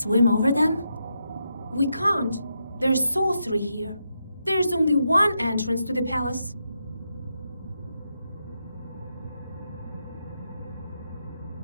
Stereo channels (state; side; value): inverted; both; correlation -0.83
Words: swim over them? We can't. There's sorcery here. There's only one entrance to the palace.